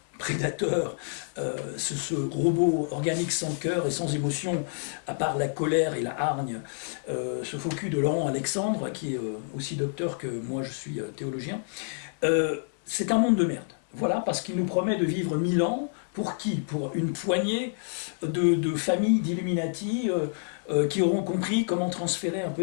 prédateur, ce robot organique sans cœur et sans émotion, à part la colère et la hargne, ce faux cul de Laurent Alexandre, qui est aussi docteur que moi je suis théologien, c'est un monde de merde. Voilà, parce qu'il nous promet de vivre 1000 ans. Pour qui? Pour une poignée de familles d'Illuminati qui auront compris comment transférer un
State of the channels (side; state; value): right; silent; 59 dB below the other